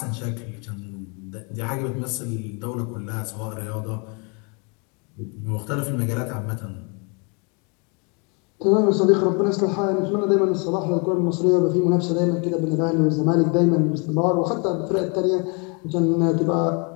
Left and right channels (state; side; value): quieter; right; 33.8 dB